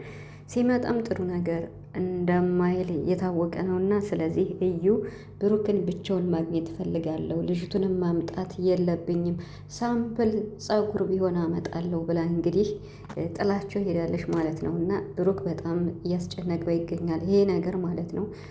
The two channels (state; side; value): identical; both; correlation 1.00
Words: ሲመጣም ጥሩ ነገር እንደማይል የታወቀ ነው። እና ስለዚህ እዩ ብሩክን ብቻውን ማግኘት እፈልጋለሁ፣ ልጅቱንም ማምጣት የለብኝም፣ ሳምፕል ጸጉር ቢሆን አመጣለሁ ብላ እንግዲህ ጥላቸው ሄዳለች ማለት ነው። እና ብሩክ በጣም እያስጨነቀው ይገኛል ይሄ ነገር ማለት ነው።